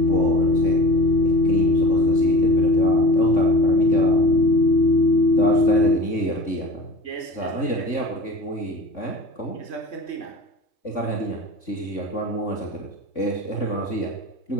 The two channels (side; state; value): right; late; 3.5 ms